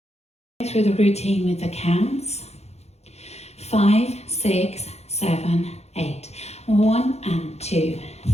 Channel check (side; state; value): right; late; 0.31 ms